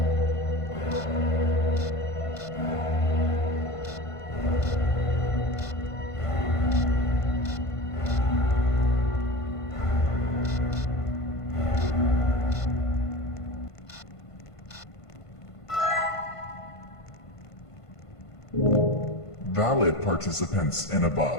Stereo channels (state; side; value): late; right; 1.5 ms